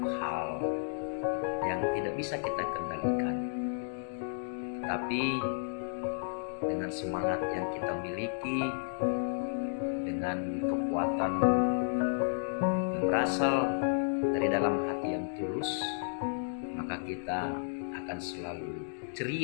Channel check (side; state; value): right; silent; digital silence